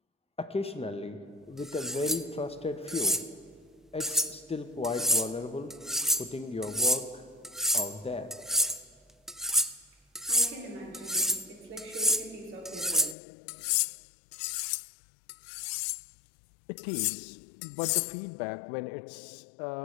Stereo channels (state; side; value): drops out; right; at 13.2 s